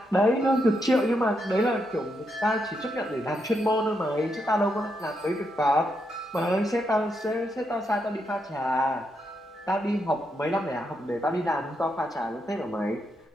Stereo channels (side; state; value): both; normal; correlation 0.81